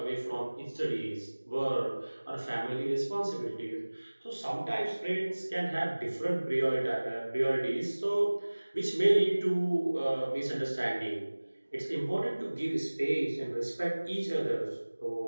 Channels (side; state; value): both; inverted; correlation -1.00